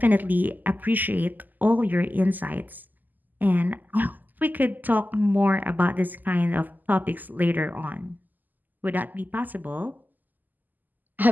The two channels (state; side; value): late; left; 0.085 ms